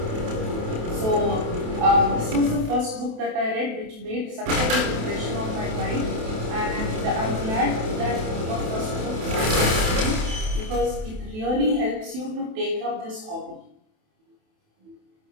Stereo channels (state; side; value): late; left; 28 ms